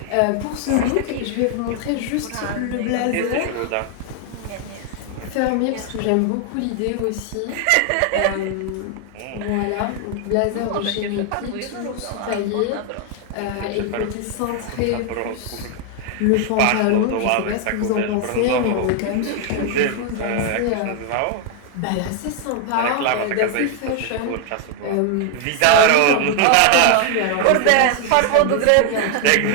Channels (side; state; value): both; different; correlation 0.00